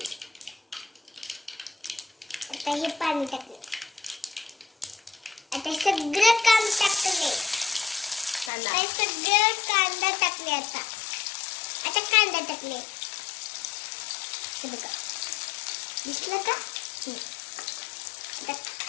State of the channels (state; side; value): drops out; right; at 8.5 s